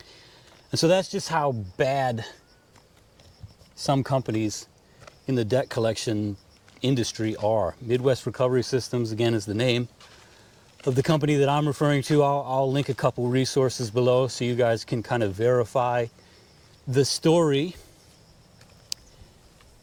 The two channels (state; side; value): identical; both; correlation 1.00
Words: And so that's just how bad some companies in the debt collection industry are. Midwest Recovery Systems, again, is the name of the company that I'm referring to. I'll link a couple resources below so you guys can kind of verify the story.